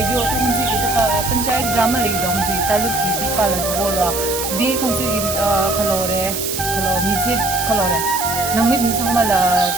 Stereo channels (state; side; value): noise; right; hiss, 4 dB below the sound